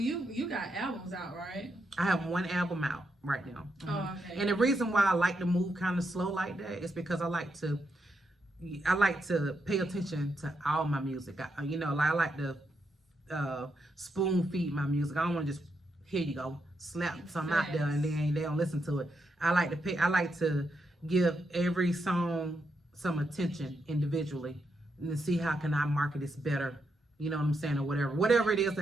got albums out, right? I have one album out right now. Mm-hmm. Oh, okay. And the reason why I like to move kind of slow like that is because I like to pay attention to all my music. I like to spoon feed my music. I don't want to just here you go slap something out there and then they don't listen to it. I like to give every song some attention individually and to see how can I market this better. You know what I'm saying, or whatever it is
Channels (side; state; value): both; normal; correlation 0.82